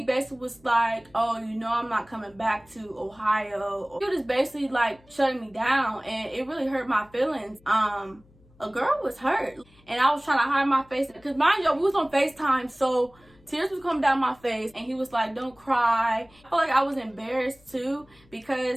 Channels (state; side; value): noise; left; hum, 29 dB below the sound